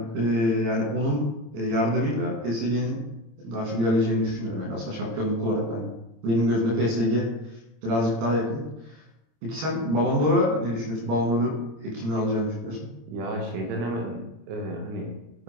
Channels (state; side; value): late; left; 26 ms